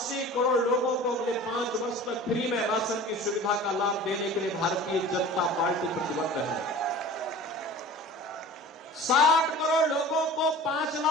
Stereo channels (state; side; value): normal; both; correlation 0.40